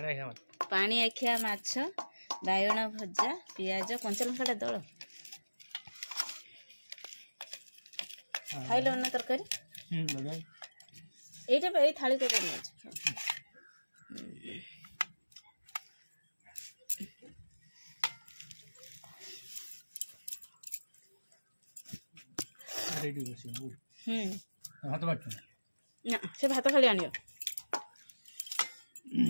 पानी आखिया माछ बायण भजा पियाज कंचा लंका दल खाइल ना तरकारी एटा ए थाली को माछ ना से भात खाली आनियो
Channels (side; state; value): both; inverted; correlation -1.00